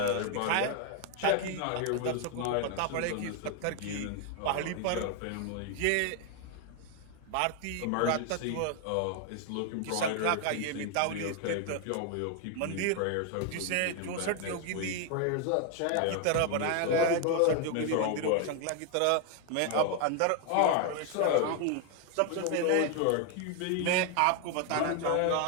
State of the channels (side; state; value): both; different; correlation 0.01